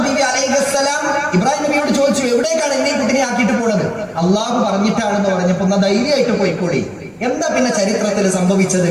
ബീവി അലൈഹിസ്സലാം ഇബ്രാഹിം നബിയോട് ചോദിച്ചു, എവിടേക്കാണ് എന്നെ കുട്ടിനെ ആക്കിയിട്ട് പോണത്? അള്ളാഹു പറഞ്ഞിട്ടാണെന്ന് പറഞ്ഞപ്പോ എന്നാ ധൈര്യമായിട്ട് പോയിക്കോളി. എന്താ പിന്നെ ചരിത്രത്തിൽ സംഭവിച്ചത്?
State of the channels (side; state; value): both; identical; correlation 1.00